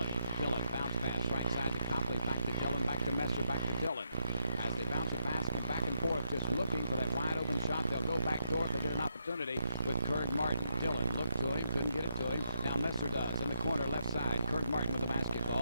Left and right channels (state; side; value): inverted; both; correlation -0.78